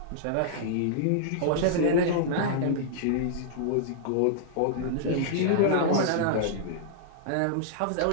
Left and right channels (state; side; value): different; both; correlation -0.02